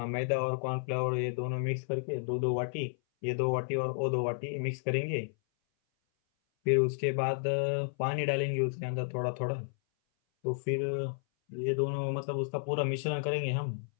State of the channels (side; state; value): right; silent; 56 dB below the other